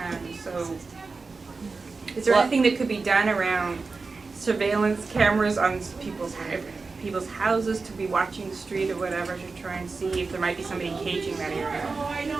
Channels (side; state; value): left; quieter; 4.2 dB